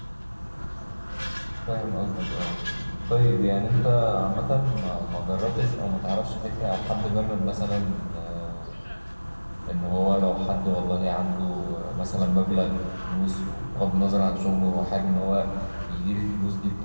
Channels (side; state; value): both; inverted; correlation -1.00